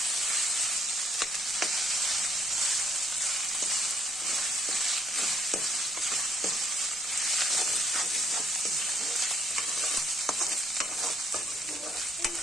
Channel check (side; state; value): both; normal; correlation 0.69